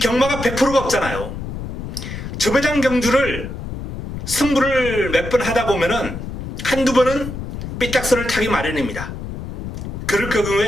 100%가 없잖아요. 저배당 경주를 승부를 몇 번 하다 보면은 한두 번은 삐딱선을 타기 마련입니다. 그럴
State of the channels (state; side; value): noise; left; rumble, 7 dB below the sound